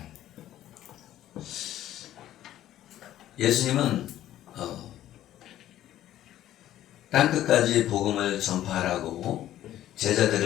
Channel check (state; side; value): quieter; right; 12.9 dB